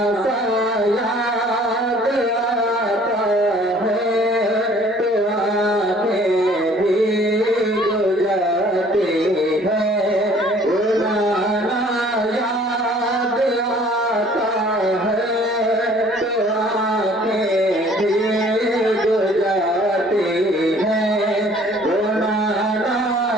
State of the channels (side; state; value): both; normal; correlation 0.55